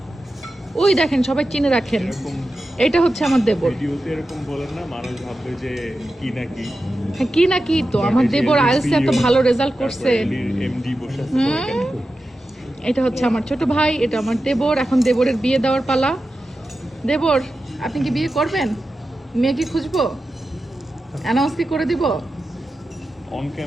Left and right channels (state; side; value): normal; both; correlation 0.92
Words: ওই দেখেন, সবাই চিনে রাখেন, এটা হচ্ছে আমার দেবর। ভিডিওতে এরকম বলেন না, মানুষ ভাববে যে কি না কি। হ্যাঁ, কি না কি তো, আমার দেবর আইএলটিএস এত ভালো রেজাল্ট করছে। এমডি বসে আছে। এটা হচ্ছে আমার ছোট ভাই, এটা আমার দেবর। এখন দেবরের বিয়ে দেওয়ার পালা। দেবর, আপনি কি বিয়ে করবেন? মেয়ে কি খুঁজবো? অ্যানাউন্স কি করে দিব? অন